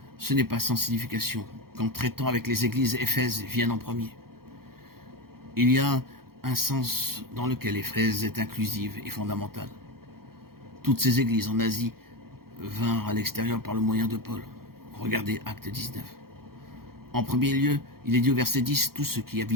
ce n'est pas sans signification qu'en traitant avec les églises, Éphèse vienne en premier. Il y a un sens dans lequel Éphèse est inclusive et fondamentale. Toutes ces églises en Asie vinrent à l'extérieur par le moyen de Paul. Regardez Acte 19. En premier lieu, il est dit au verset 10, tous ceux qui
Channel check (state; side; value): late; left; 0.94 ms